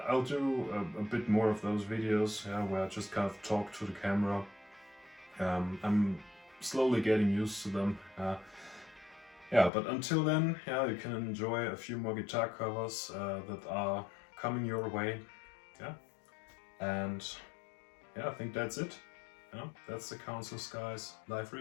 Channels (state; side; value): drops out; right; at 9.7 s